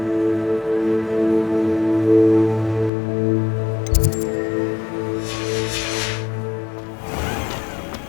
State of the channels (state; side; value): drops out; right; at 2.9 s